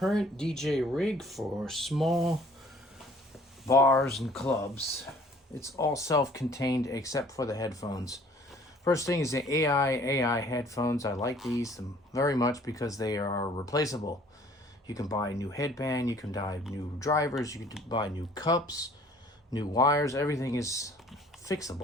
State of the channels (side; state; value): both; normal; correlation 0.55